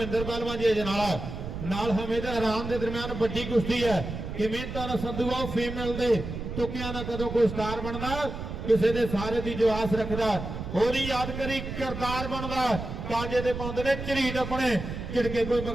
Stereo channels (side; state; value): right; noise; rumble, 7 dB below the sound